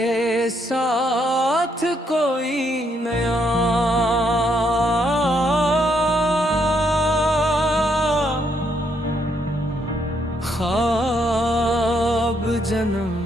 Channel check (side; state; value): both; normal; correlation 0.74